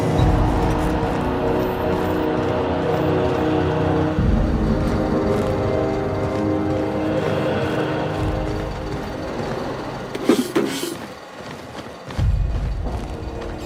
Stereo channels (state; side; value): identical; both; correlation 1.00